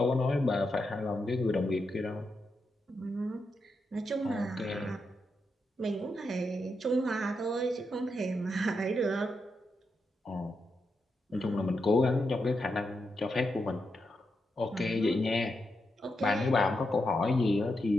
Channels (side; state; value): both; normal; correlation 0.85